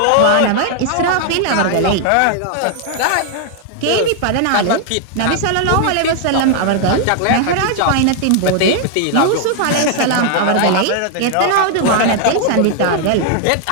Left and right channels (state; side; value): different; both; correlation 0.00